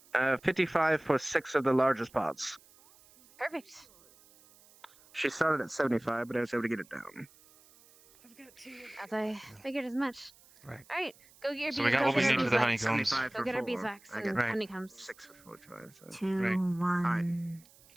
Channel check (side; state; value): right; noise; hiss, 26 dB below the sound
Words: there. 55 for 6 of the largest pots. Perfect. She started at 75, but I was able to get it down. I've got 2. As I figured as much. Right. All right. Go get your So we got go what we get our need for the beeswax. honeycombs. 75 Go for get our 4. beeswax I and got Right. honeycombs. 6 for 45. So. 2, Right. 1.